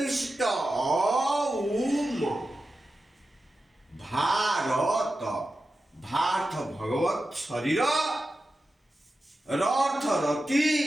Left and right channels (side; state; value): both; normal; correlation 0.92